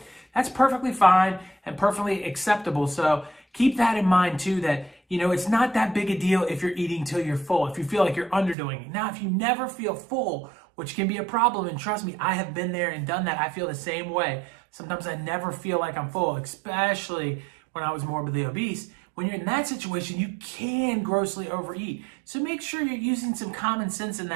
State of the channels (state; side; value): drops out; left; at 8.6 s